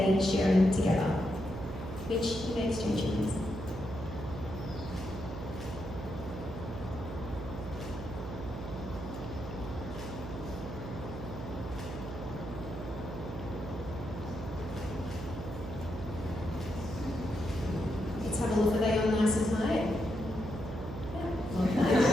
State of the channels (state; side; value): noise; right; hum, 7 dB below the sound